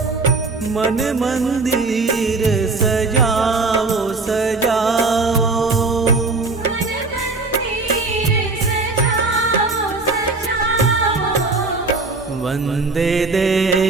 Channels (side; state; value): left; quieter; 3.7 dB